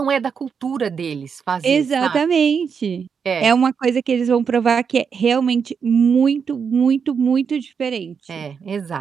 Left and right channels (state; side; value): quieter; left; 6.4 dB